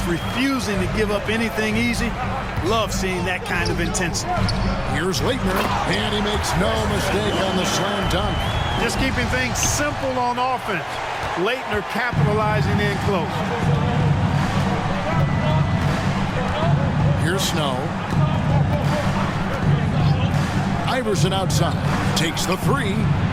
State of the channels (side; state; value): both; identical; correlation 1.00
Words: refusing to give up anything easy, love seeing that kind of intensity. Here's Leitner, and he makes no mistake on the slam dunk. Just keeping things simple on offense. Leitner capitalizing in close. Here's Snow. Iverson outside. Takes the three.